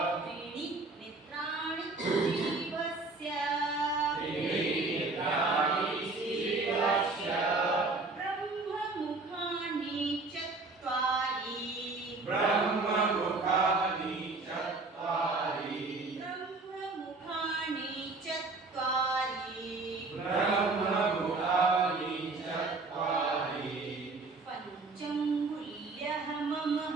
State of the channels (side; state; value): left; quieter; 3.6 dB